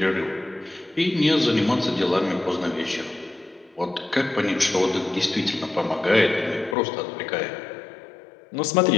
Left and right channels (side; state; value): right; drops out; at 6.8 s